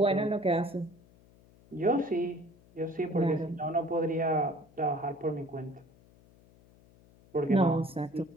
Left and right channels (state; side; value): noise; left; hum, 27 dB below the sound